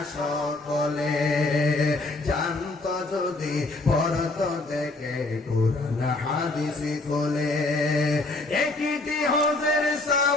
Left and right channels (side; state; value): right; quieter; 3.0 dB